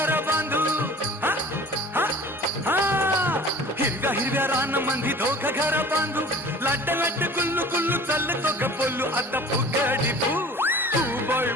बांधू हा हा हा हिरव्या हिरव्या रानामंदी दोघं घर बांधू लाट लाट गुल्लू गुल्लू चालतो ग बोलू आता फुगडी फू फू बाई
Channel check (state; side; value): normal; both; correlation 0.44